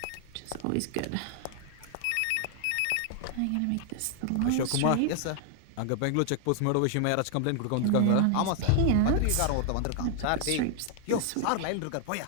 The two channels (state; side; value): different; both; correlation 0.00